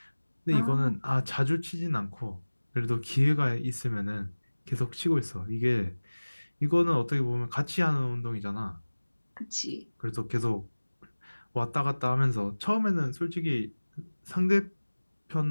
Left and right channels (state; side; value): inverted; both; correlation -1.00